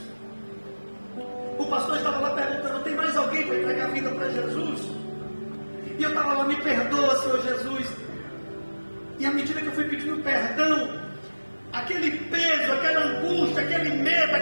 o pastor estava lá perguntando: tem mais alguém para entregar a vida para Jesus? E eu estava lá: me perdoa, Senhor Jesus. E à medida que eu fui pedindo perdão, aquele peso, aquela angústia, aquele medo,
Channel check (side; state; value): both; inverted; correlation -1.00